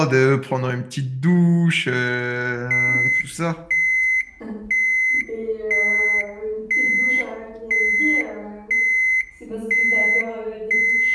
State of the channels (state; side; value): identical; both; correlation 1.00